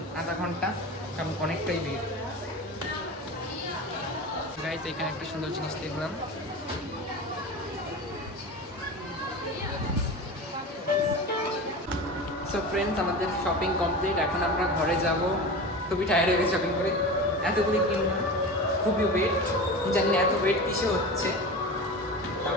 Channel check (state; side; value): normal; both; correlation 0.29